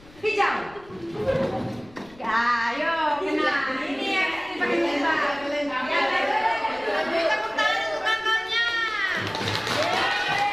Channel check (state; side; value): noise; left; rumble, 24 dB below the sound